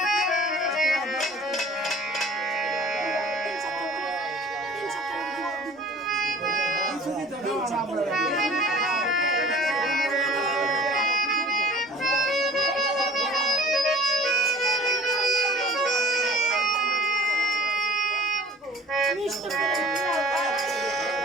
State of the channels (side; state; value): both; normal; correlation 0.46